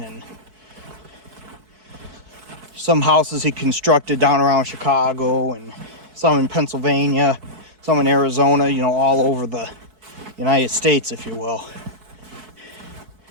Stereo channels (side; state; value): left; late; 4.6 ms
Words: some houses he constructed down around Chicago, and some in Pennsylvania, some in Arizona, you know, all over the United States, if you will.